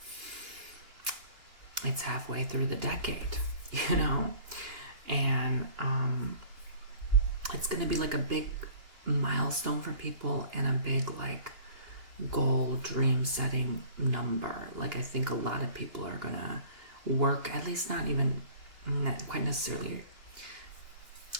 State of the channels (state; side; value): late; left; 2.9 ms